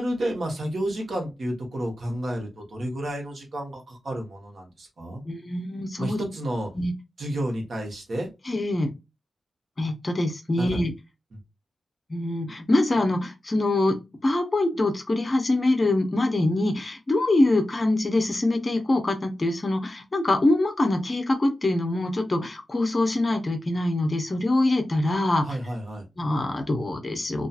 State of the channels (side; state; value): both; normal; correlation 0.93